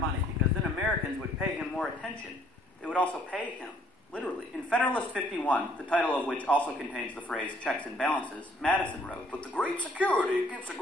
because then Americans would pay him more attention. They would also pay him Literally. In Federalist 51, the title of which also contains the phrase checks and balances, Madison wrote, "But the great security against a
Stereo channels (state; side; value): normal; both; correlation 0.63